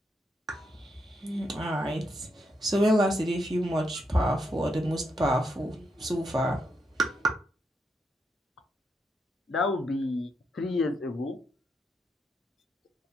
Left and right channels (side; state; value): both; normal; correlation 0.81